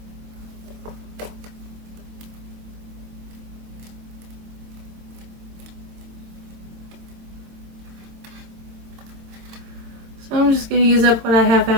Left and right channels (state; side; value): late; left; 22 ms